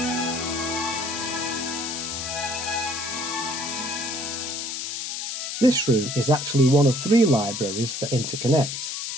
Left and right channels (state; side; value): noise; left; hiss, 4 dB below the sound